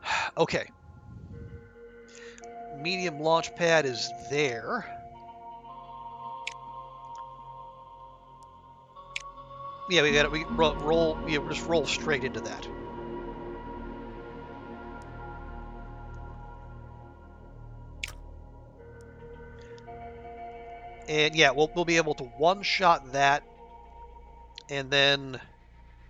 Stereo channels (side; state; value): both; identical; correlation 1.00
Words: Okay. Medium launch pad is there. Yeah, we got it. We roll. Yeah, we'll just roll straight into that. And yeah, we'll be able to one-shot that, and then,